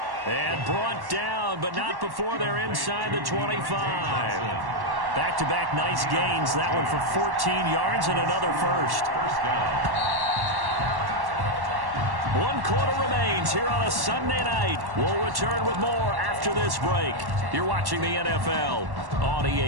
And brought down, but not before they're inside the 25. Back-to-back nice gains. That one for 14 yards and another 1st. 1st down. 1 quarter remains here on a Sunday night. We'll return with more after this break. You're watching the NFL on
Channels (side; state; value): left; late; 1.1 ms